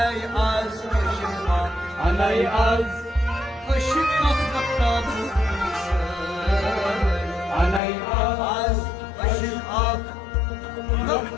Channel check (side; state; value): right; drops out; at 7.8 s